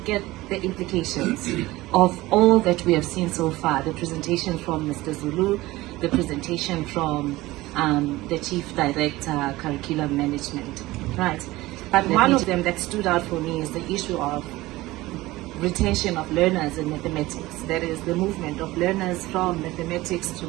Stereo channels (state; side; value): quieter; left; 18.7 dB